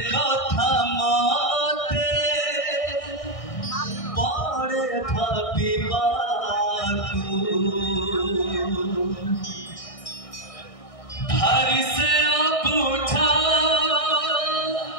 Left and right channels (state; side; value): late; right; 1.6 ms